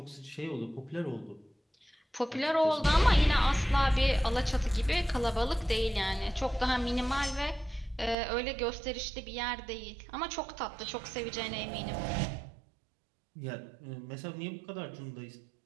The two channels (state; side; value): drops out; left; at 8.2 s